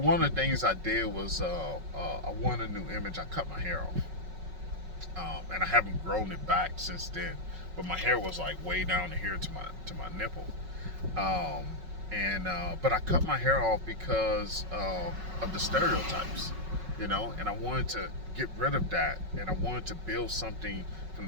of the things I did was I wanted a new image. I cut my hair off, and I haven't grown it back since then. But my hair was like way down here to my nipple. And but I cut my hair off because of the stereotypes, you know, and I wanted to get rid of that, and I wanted to build something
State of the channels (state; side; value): late; left; 5.4 ms